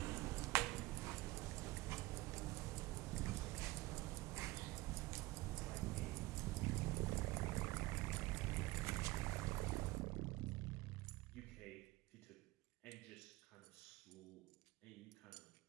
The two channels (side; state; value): left; quieter; 19.9 dB